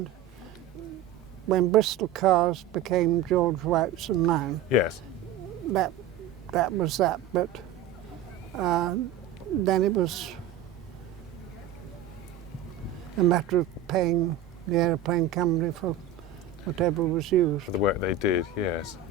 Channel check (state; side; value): quieter; left; 7.6 dB